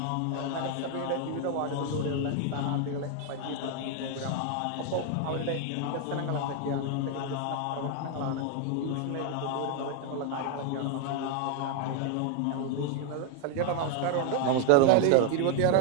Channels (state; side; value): different; both; correlation 0.00